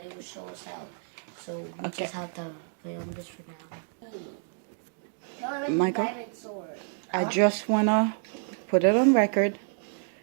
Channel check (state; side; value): silent; left; 59 dB below the other